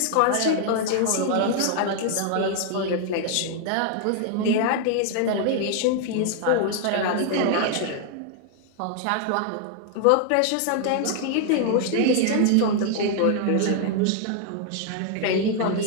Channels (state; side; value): different; both; correlation 0.00